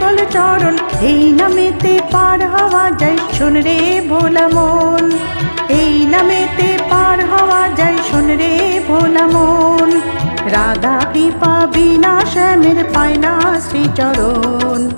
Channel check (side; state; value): both; inverted; correlation -1.00